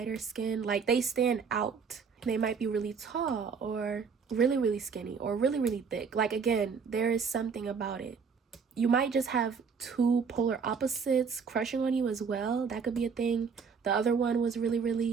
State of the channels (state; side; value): quieter; left; 5.8 dB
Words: skin. Like, they stand out. They might be really tall, or really, really skinny, or really, really thick. Like, again, there is something about it. You might just have two polar opposites crushing on you as well. That could be a thing. The other one was really,